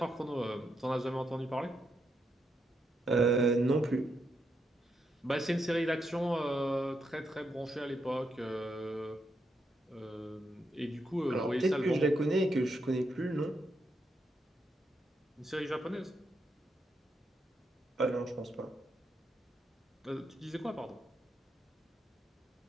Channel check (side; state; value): both; normal; correlation 0.82